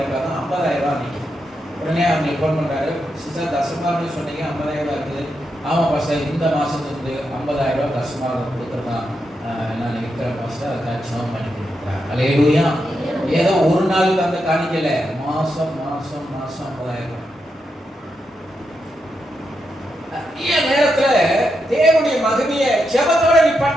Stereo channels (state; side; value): normal; both; correlation 0.84